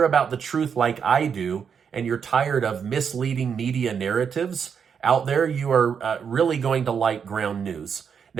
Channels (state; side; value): quieter; left; 6.9 dB